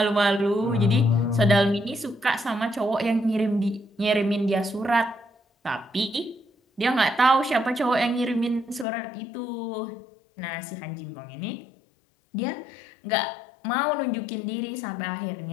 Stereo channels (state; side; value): drops out; right; at 8.8 s